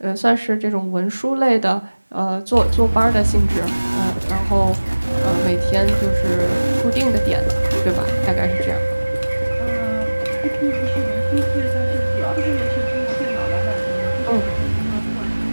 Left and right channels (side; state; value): both; inverted; correlation -1.00